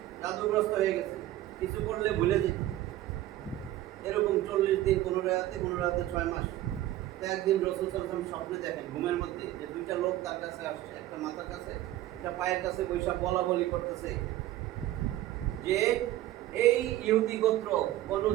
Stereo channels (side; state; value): left; quieter; 14.5 dB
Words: জাদুগ্রস্ত হয়ে গেছে, কিছু করলে ভুলে যেত, এরকম 40 দিন, 15 রাতে 6 মাস। তো একদিন রসুল সাল্লাল্লাহু আলাইহি ওয়াসাল্লাম স্বপ্নে দেখেন ঘুমের মধ্যে যে দুইটা লোক তার কাছে আসছে, একটা মাথার কাছে একটা পায়ের কাছে বৈশা বলা বলি করতেছে যে এই ইহুদি গোত্র বনু